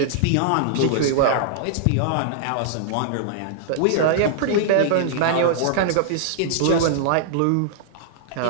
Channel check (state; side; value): different; both; correlation -0.01